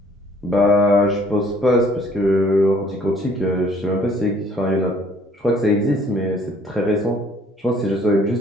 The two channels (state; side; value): normal; both; correlation 0.59